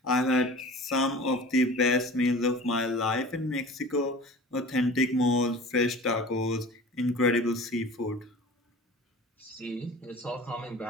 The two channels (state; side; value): normal; both; correlation 0.40